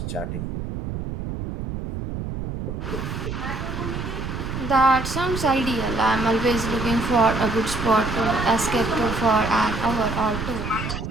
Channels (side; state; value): right; noise; rumble, 5 dB below the sound